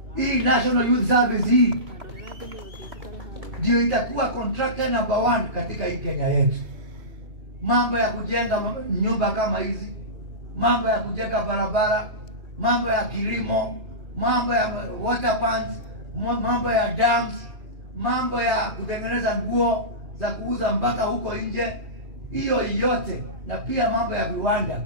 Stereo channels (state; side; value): late; left; 2.8 ms